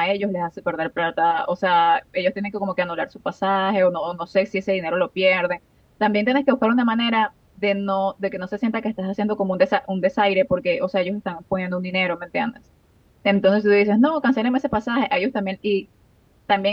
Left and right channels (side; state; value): both; identical; correlation 1.00